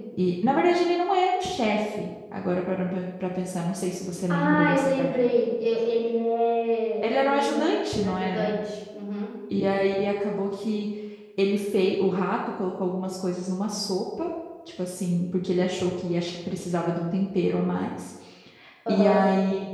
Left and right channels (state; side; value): identical; both; correlation 1.00